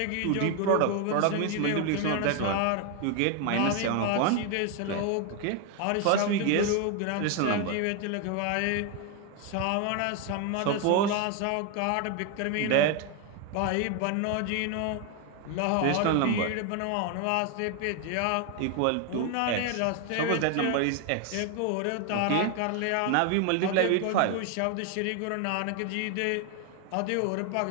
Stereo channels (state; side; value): different; both; correlation 0.01